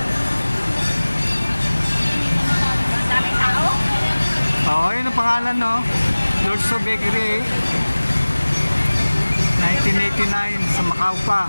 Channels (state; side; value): inverted; both; correlation -1.00